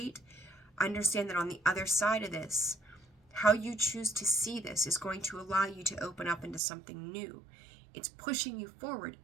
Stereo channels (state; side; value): drops out; left; at 6.6 s